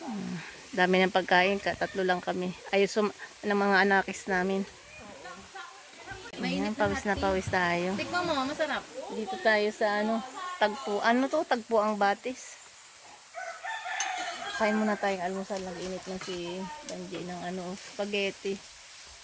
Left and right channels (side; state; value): both; identical; correlation 1.00